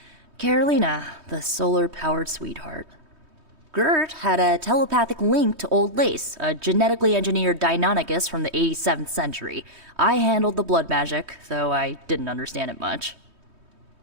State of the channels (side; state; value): left; late; 3.2 ms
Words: Carolina, the solar-powered sweetheart. Gert had a telepathic link to Old Lace, a genetically engineered Deinonychus from the 87th century. I handled the blood magic, though I didn't understand it much.